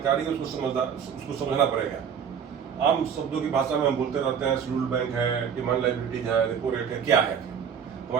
उसको समझना पड़ेगा। आम शब्दों की भाषा में हम बोलते रहते हैं, शेड्यूल्ड बैंक है, डिमांड लायबिलिटीज है, रेपो रेट है, क्या है।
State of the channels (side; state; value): left; quieter; 7.5 dB